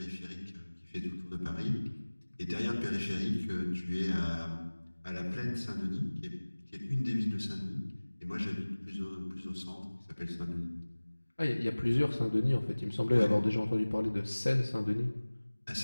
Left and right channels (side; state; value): both; inverted; correlation -1.00